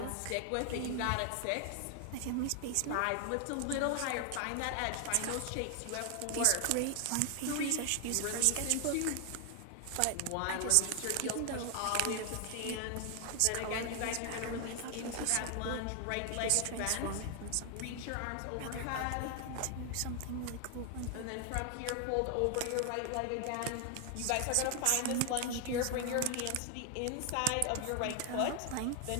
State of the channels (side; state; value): both; different; correlation 0.00